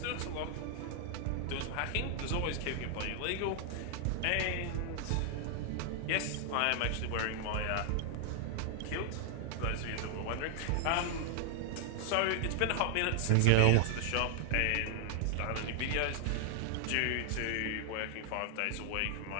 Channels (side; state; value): both; different; correlation 0.00